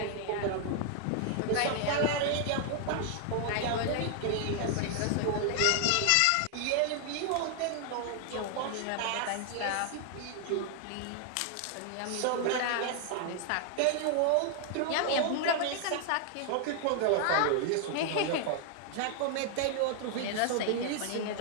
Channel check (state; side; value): different; both; correlation 0.00